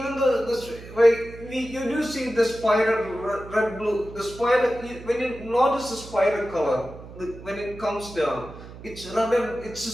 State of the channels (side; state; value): right; noise; hum, 15 dB below the sound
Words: though you do see the spider red blue, the spider, when you notice the spider color, when it comes down, it's red and it's a